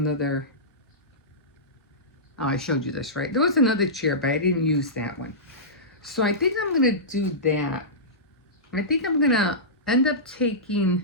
oh, I showed you this, right? There was another chair, but I didn't use that one. So I think I'm going to do that. I think I'm going to end up taking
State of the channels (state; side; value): normal; both; correlation -0.17